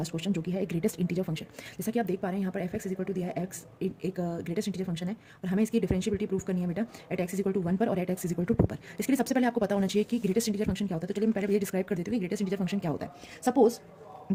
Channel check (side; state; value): both; identical; correlation 1.00